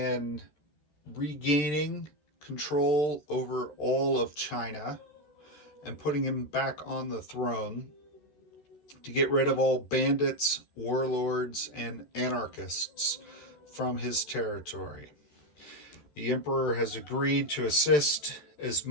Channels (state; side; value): late; right; 13 ms